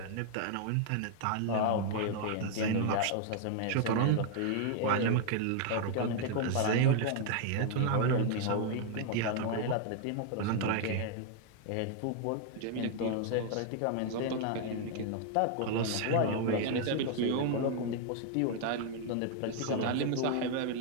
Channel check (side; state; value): both; different; correlation 0.00